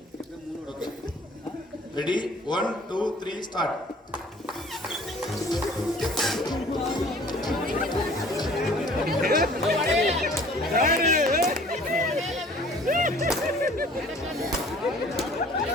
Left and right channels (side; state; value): both; normal; correlation 0.51